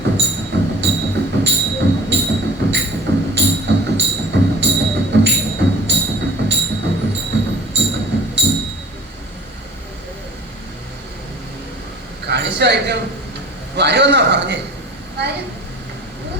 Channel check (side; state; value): both; normal; correlation 0.46